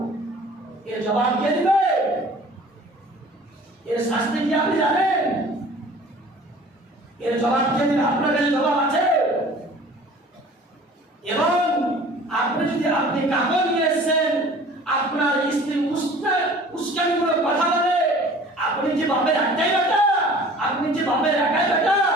এর জবাব কে দিবে? এর শাস্তি কি আপনি জানেন? এর জবাব কে দিবে? আপনার কাছে জবাব আছে? এবং আপনি কাপড় নিয়ে এসেছেন, আপনার স্ত্রী উস্কানি করে কথা বলে, আপনি যে বাপের একটাই বেটা, আপনি যে বাপের একাই বেটা,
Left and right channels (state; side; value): normal; both; correlation 0.47